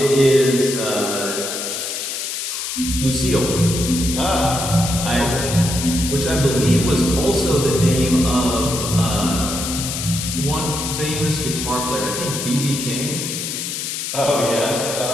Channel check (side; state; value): left; noise; hiss, 4 dB below the sound